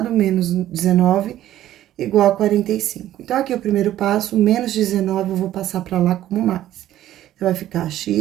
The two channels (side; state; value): left; quieter; 13.1 dB